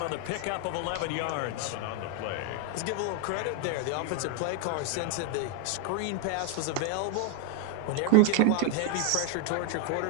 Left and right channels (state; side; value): different; both; correlation 0.01